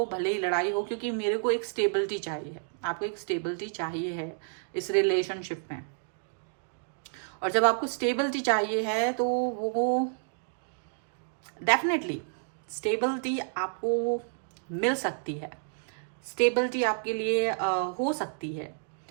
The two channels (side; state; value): left; silent; digital silence